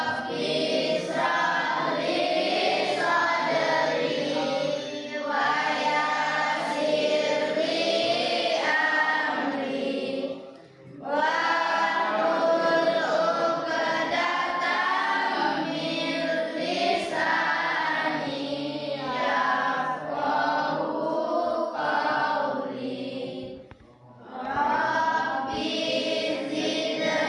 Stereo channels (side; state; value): both; identical; correlation 1.00